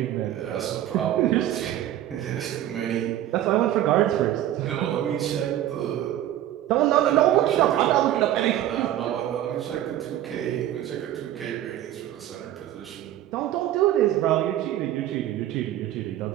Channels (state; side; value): quieter; left; 12.7 dB